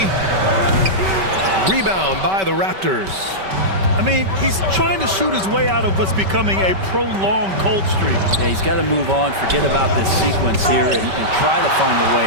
Rebound by the Raptors. I mean, he's trying to shoot his way out of what's becoming a prolonged cold streak. Yeah, he's got to move on, forget about this sequence here, and try to find a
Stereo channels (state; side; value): late; left; 5.2 ms